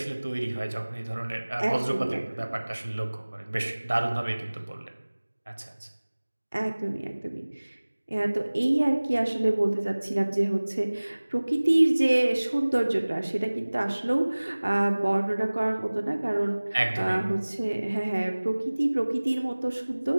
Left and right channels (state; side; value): inverted; both; correlation -1.00